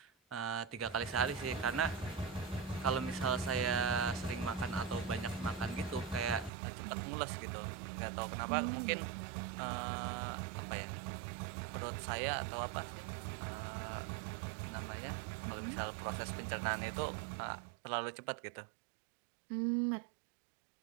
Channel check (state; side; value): drops out; left; at 6.5 s